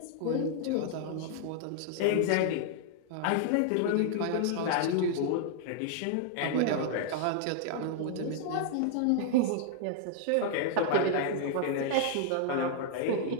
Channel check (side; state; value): both; different; correlation -0.01